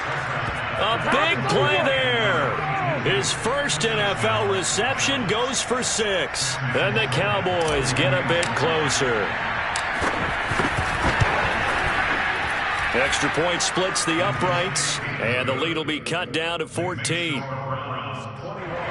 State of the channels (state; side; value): identical; both; correlation 1.00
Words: A big play there. His first NFL reception goes for 6. And the Cowboys get a bit closer. Extra point splits the uprights. And the lead will be cut down to 14.